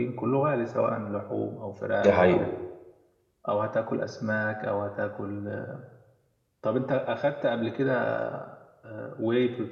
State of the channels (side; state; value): both; identical; correlation 1.00